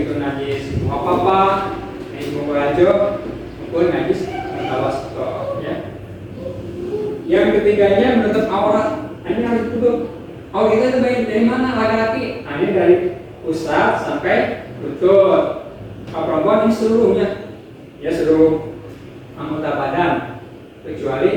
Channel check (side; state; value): both; identical; correlation 1.00